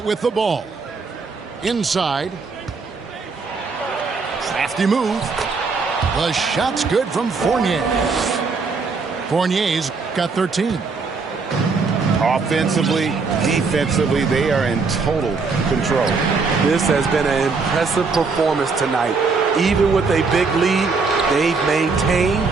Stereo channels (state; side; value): quieter; left; 4.6 dB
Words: with the ball. Inside. Crafty move. The shot's good from Fournier. Fournier's got 13. Offensively, defensively, they are in total control. This has been an impressive performance tonight. Even with a big lead, they've